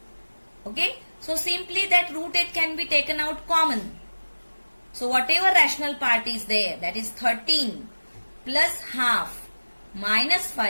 Okay. So simply that root 8 can be taken out common. So whatever rational part is there, that is 13 plus half minus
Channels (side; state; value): both; inverted; correlation -1.00